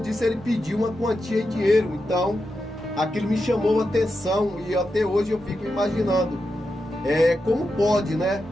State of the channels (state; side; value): normal; both; correlation 0.88